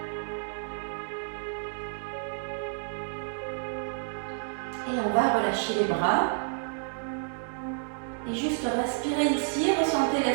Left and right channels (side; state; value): left; silent; digital silence